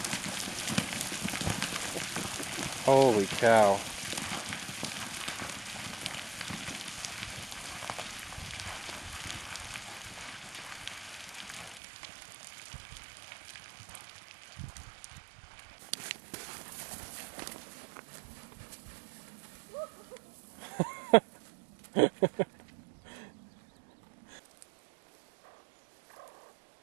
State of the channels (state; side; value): drops out; left; at 11.8 s